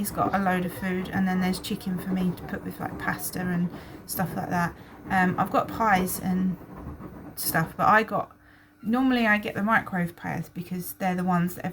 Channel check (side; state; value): both; identical; correlation 1.00